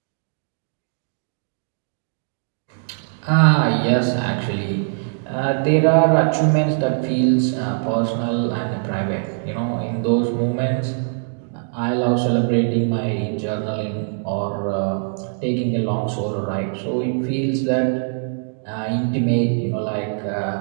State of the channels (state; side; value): silent; left; digital silence